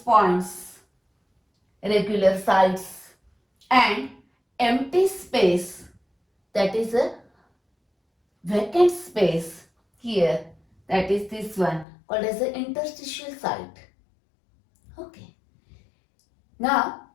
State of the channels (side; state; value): right; drops out; at 11.9 s